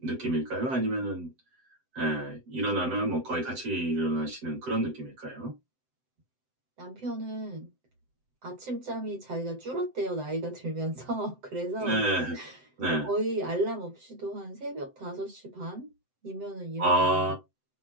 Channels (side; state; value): left; late; 7.8 ms